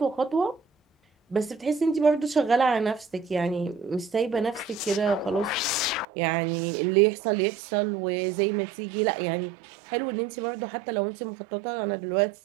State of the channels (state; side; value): drops out; left; at 6.1 s